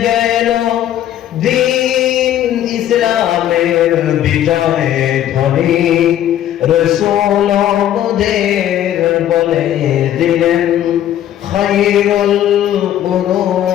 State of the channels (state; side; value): quieter; right; 11.6 dB